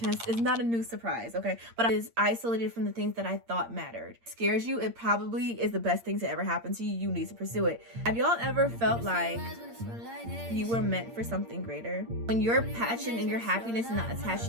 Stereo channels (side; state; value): left; late; 8.7 ms